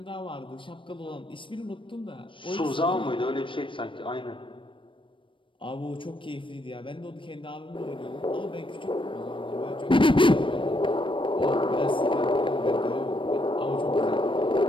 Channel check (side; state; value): right; late; 0.25 ms